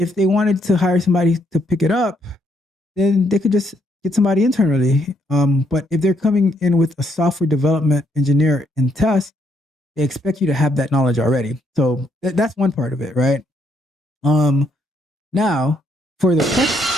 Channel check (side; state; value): both; normal; correlation 0.73